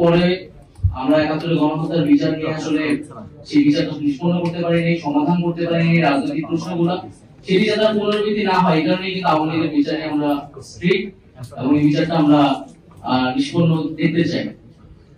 পরে আমরা ৭১ গণহত্যার বিচার নিয়ে আসলে সেই বিচারটা নিষ্পন্ন করতে পারিনি, সমাধান করতে পারিনি রাজনৈতিক প্রশ্নগুলো, সেটি যাতে পুনরাবৃত্তি না হয় এই কারণে কিন্তু আওয়ামী লীগের বিচারে আমরা স্ট্রিক্ট এবং এই বিচারটা আমরা নিষ্পন্ন দেখতে চাই।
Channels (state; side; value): identical; both; correlation 1.00